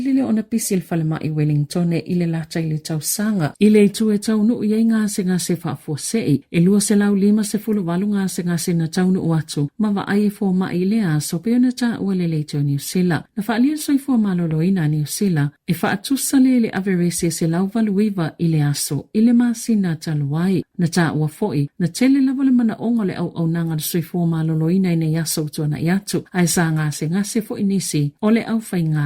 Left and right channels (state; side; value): identical; both; correlation 1.00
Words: o na pisil falema i Wellington e ile lata i le tau sanga. Ile i tu e tau nuu iei ngase ngase whaafua sei. E lua se lau 5 walu ngase ngase na tau nuu atu. Ma wa ai e fua ma i le aso peo na ta ua le leiteo New Zealand. Na whaalia soi fua malolo ina New Zealand. E whaatusa le averese se lau valuiva i le aso. Ile masi na taluai. Na ta ua foi. Na tele lava le mana ongo le au nanga soi fua malolo ina ina yaso utua i atu. Ai sa ngase foi nisi. O le au whai